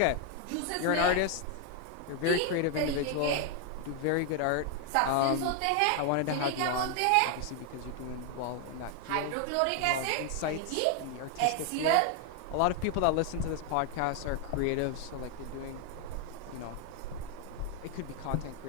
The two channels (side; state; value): both; different; correlation 0.00